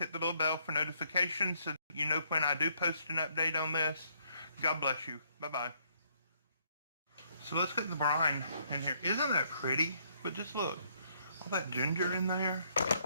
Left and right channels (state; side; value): inverted; both; correlation -0.69